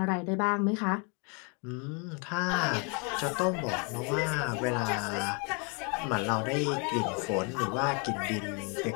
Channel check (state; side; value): quieter; right; 34.4 dB